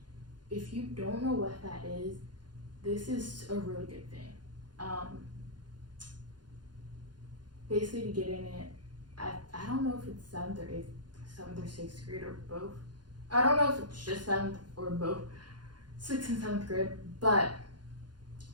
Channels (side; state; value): left; late; 0.70 ms